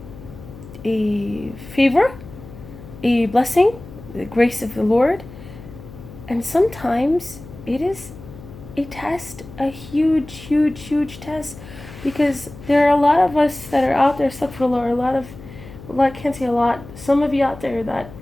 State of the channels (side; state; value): left; noise; hum, 16 dB below the sound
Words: favor, a blessing, the grace of the Lord. And sometimes it is a test, a huge test, because there are a lot of us that are out there, astaghfirullah, I can't say a lot, some of you out there that